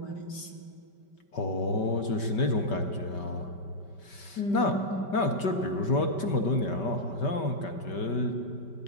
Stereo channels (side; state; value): right; late; 5.2 ms